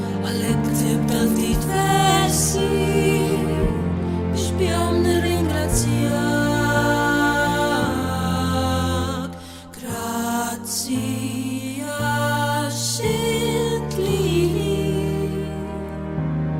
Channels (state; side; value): identical; both; correlation 1.00